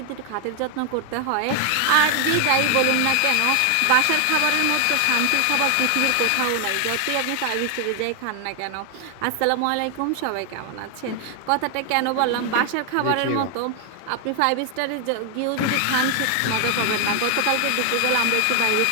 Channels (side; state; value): both; different; correlation 0.00